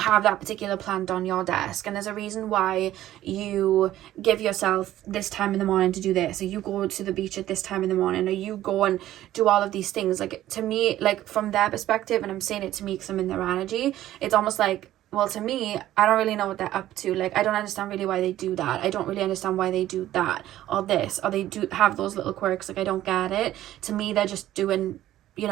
that particular plant on your desk, and there's a reason why you give yourself this time in the morning to do this, or you go to the beach at this time in the morning, or you go and do all of these things. Like, to me, like from their perspective, and I'm saying it to me because I'm in their energy, it's almost like, well, to me, I don't really know what they're up to. Like, I don't understand really why they do that. I don't really understand why they do that or this, or they do have those little quirks. Like, I don't get it. To me, they're just doing, you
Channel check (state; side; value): quieter; left; 13.6 dB